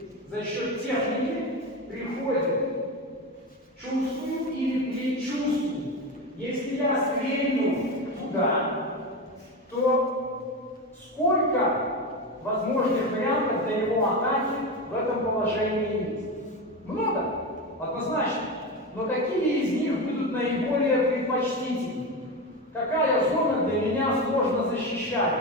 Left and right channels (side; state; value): both; normal; correlation 0.19